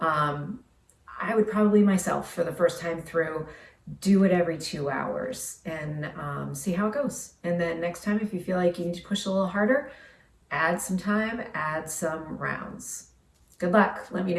I would probably myself, for the first time through, do it every 2 hours and see how it goes. And then next time, if you feel like you need to push a little harder, add some time, add some rounds. Good luck. Let me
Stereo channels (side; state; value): both; identical; correlation 1.00